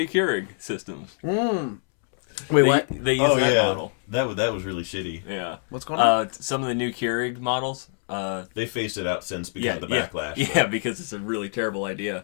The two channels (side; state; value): right; silent; 62 dB below the other